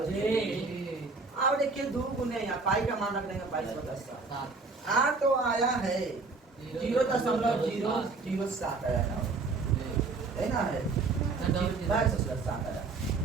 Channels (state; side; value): quieter; left; 4.0 dB